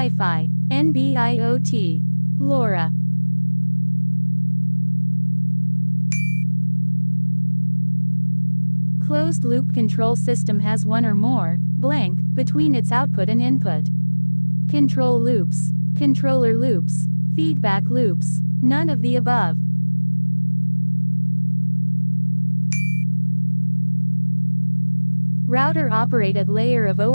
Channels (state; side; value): inverted; both; correlation -1.00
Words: NB-IoT, LoRa. Closed-loop control system has one or more, blank, between its output and input. Control loops, controller loops, feedback loops, none of the above. Router operate at layer of